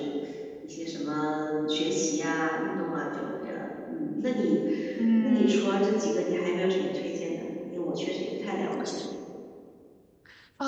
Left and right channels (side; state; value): both; identical; correlation 1.00